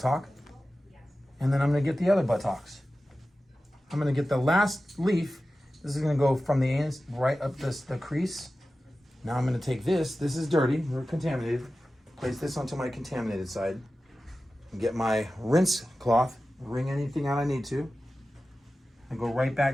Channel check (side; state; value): both; normal; correlation 0.94